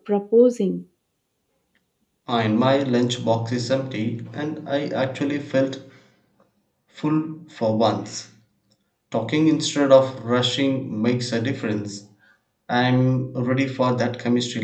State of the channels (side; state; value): both; identical; correlation 1.00